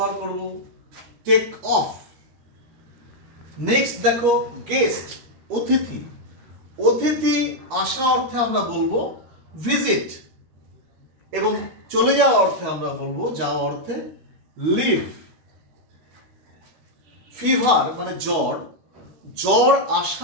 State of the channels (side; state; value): left; late; 13 ms